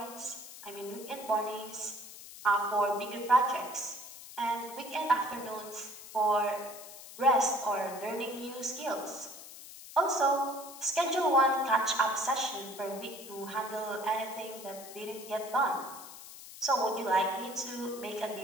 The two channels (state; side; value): noise; left; hiss, 15 dB below the sound